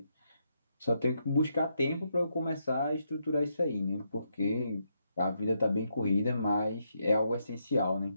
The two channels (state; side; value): inverted; both; correlation -0.79